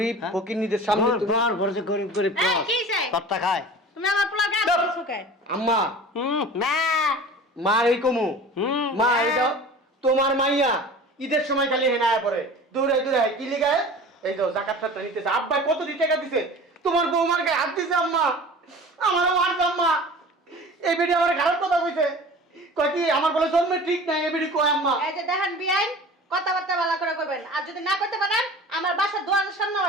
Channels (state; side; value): normal; both; correlation 0.39